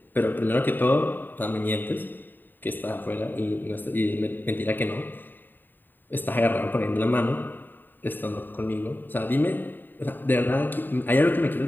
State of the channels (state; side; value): late; right; 0.092 ms